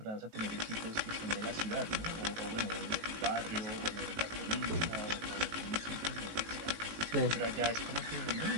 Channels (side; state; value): left; late; 18 ms